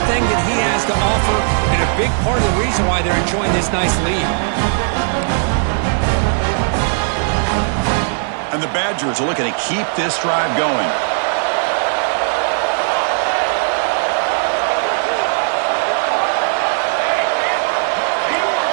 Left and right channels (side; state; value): left; silent; 60 dB below the other